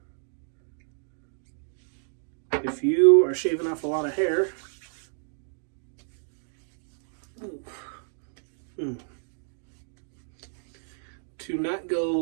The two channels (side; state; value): left; silent; digital silence